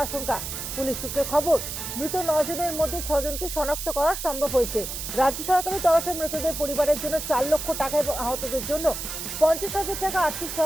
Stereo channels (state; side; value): noise; right; hiss, 6 dB below the sound